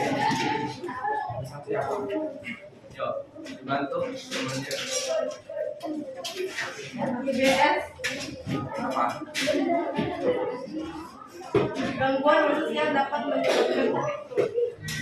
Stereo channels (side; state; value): both; identical; correlation 1.00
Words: gangguan manusia dapat menyebabkan